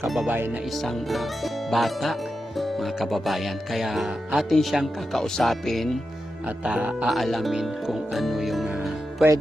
kababayan na isang bata mga kababayan. Kaya atin siyang kakausapin at aalamin kung ano yung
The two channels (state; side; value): normal; both; correlation 0.89